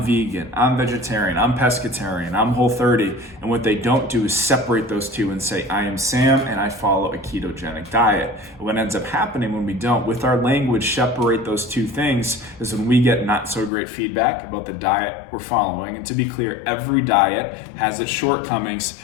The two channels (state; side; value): drops out; right; at 13.7 s